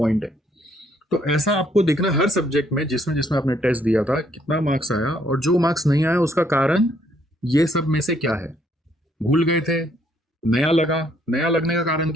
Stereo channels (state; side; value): normal; both; correlation 0.68